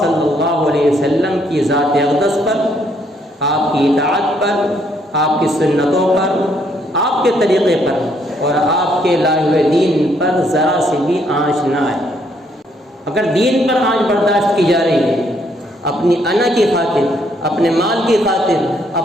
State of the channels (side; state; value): both; normal; correlation 0.70